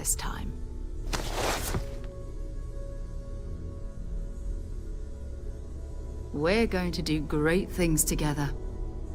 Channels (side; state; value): both; identical; correlation 1.00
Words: time. We're going to do great things together.